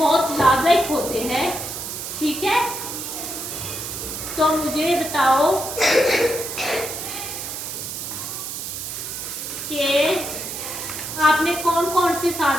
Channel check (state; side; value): noise; right; hiss, 6 dB below the sound